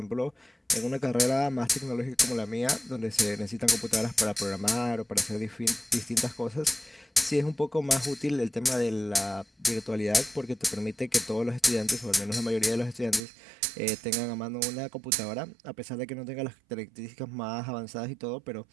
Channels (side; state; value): left; drops out; at 13.2 s